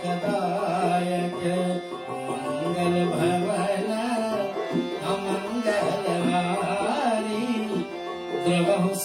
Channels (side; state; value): both; identical; correlation 1.00